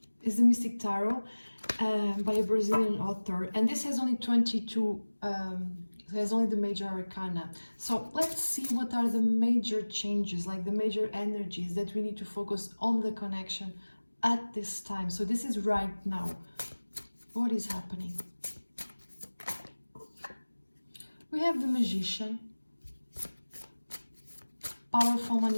It's the Mystic Tarot by a Brazilian author, and this has only 22, has only the major arcana. So let's see what are the major changes, like the major energies that we need to focus on the connection at this time. So this is right now. What is happening? We have the Magician, powerful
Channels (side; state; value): both; inverted; correlation -1.00